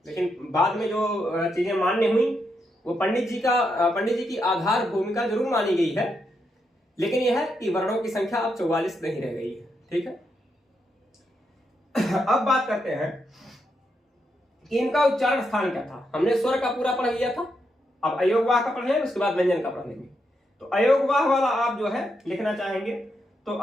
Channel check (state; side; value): normal; both; correlation 0.82